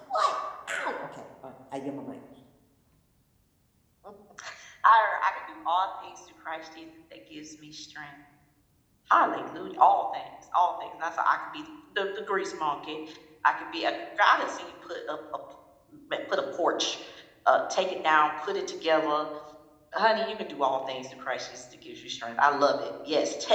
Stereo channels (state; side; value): identical; both; correlation 1.00